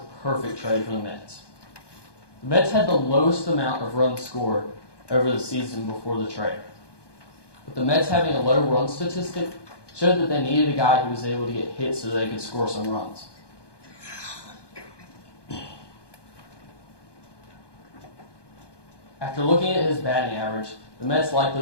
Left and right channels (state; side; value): late; right; 1.2 ms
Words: perfect trade for the Mets. The Mets had the lowest amount of runs scored over the season before the trade. But the Mets having a low run statistic showed that they needed a guy who was able to get hits so they could score some runs. After looking at his batting average, the Mets